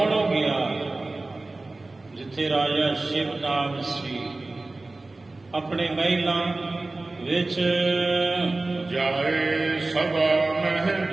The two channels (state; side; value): quieter; left; 3.1 dB